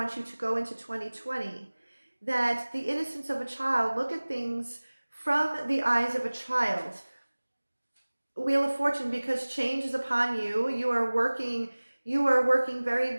you to go into 2020. That the innocence of a child, look at things from the eyes of a child. Wheel of Fortune, because change is upon you. You are working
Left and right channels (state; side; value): inverted; both; correlation -1.00